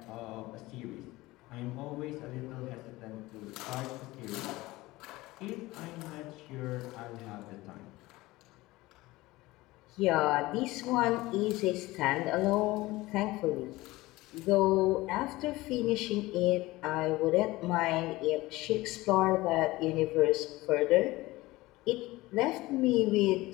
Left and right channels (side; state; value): right; quieter; 19.5 dB